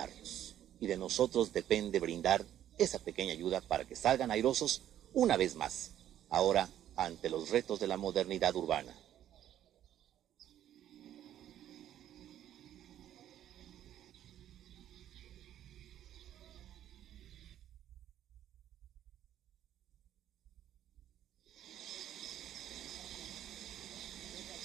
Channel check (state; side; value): quieter; left; 11.4 dB